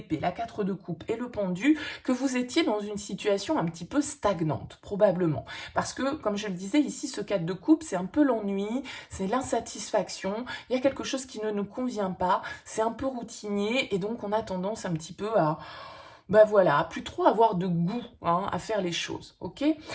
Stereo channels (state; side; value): identical; both; correlation 1.00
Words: la 4 de coupe et le pendu, que vous étiez dans une situation un petit peu stagnante, probablement. Parce que, comme je le disais, ici, ce 4 de coupe, c'est un peu l'ennui, c'est l'insatisfaction, il y a quelque chose qui ne nous convient pas, c'est un peu routinier, et donc on a tendance un petit peu à... ben voilà, plus trop avoir de goût, hein, à faire les choses, ok?